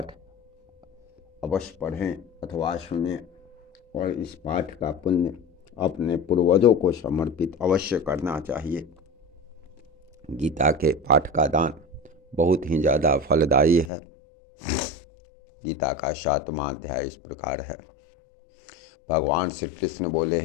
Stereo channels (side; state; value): right; drops out; at 13.9 s